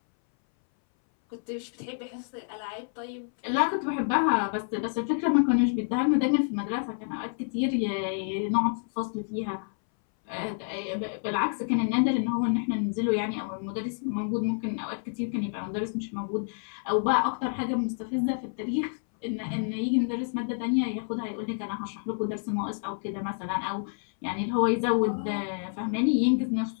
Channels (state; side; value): silent; right; 59 dB below the other